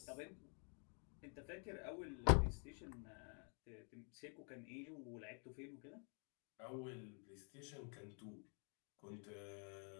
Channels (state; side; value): quieter; right; 38.9 dB